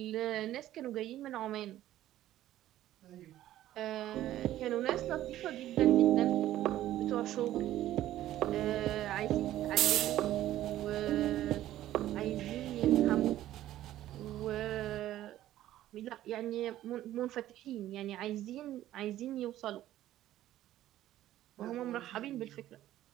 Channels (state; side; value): quieter; left; 13.6 dB